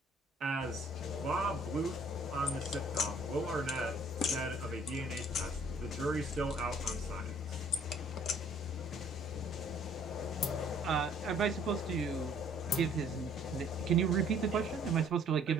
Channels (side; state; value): both; normal; correlation 0.59